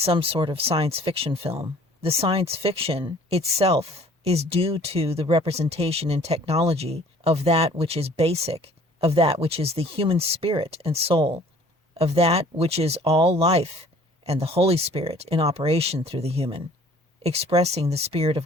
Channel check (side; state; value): both; normal; correlation 0.53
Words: sort of science fiction film. The science fiction itself is due to the representation in technology of that which is basic, of that which is the human spirit and soul, of that which is all life and the Holy Spirit in operation through the human, expressing the Spirit of